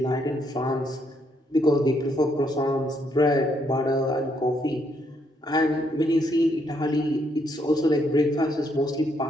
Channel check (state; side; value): normal; both; correlation 0.74